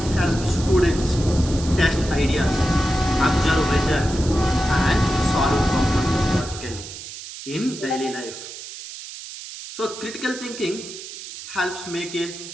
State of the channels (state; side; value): noise; right; hiss, 12 dB below the sound